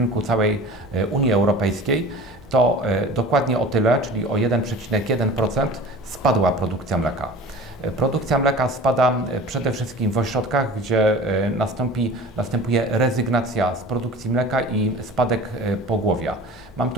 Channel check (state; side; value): normal; both; correlation 0.40